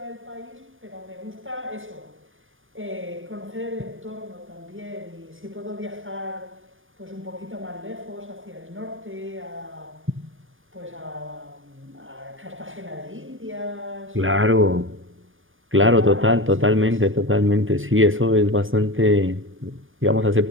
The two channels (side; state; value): left; late; 0.58 ms